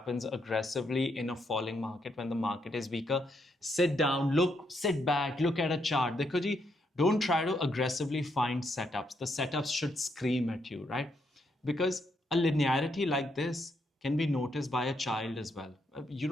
aggressively in a falling market when the market is weaker. Sit down, sit back, look at a chart. Dekho ji, don't try to aggressively find setups. The setups should scream at you, right? Because a linearity like this can be noticed by a child as well. You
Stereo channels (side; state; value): both; normal; correlation 0.77